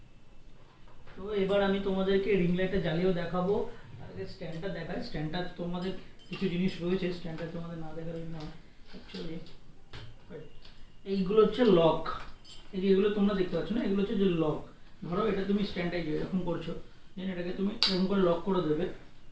তো এবার আমি তোমাদেরকে রিং লাইটটা জ্বালিয়েও দেখাবো। আগে স্ট্যান্ডটা দেখাই। স্ট্যান্ডটা তোমাদের কিছু জিনিস রয়েছে, স্ট্যান্ডটা তোমাদের না দেখালে না। অ্যাকচুয়ালি এইগুলো হচ্ছে লক। এই যে এগুলো তোমরা দেখতে পাচ্ছ না, এগুলো হচ্ছে যে লক। ধরো এটা তুমি স্ট্যান্ডটাই এরকম করছো, দেন এটাকে তুমি এরকম করে লক করে দেবে।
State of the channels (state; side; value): identical; both; correlation 1.00